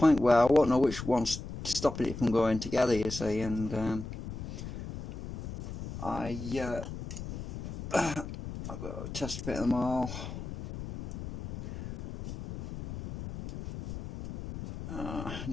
where I won't know which one's stopping it from going together, you see. And I've got to test fit them all. I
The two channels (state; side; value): noise; left; rumble, 9 dB below the sound